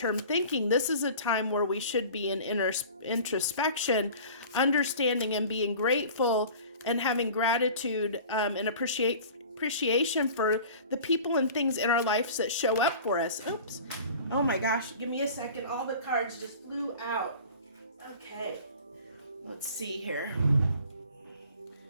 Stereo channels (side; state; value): both; inverted; correlation -0.42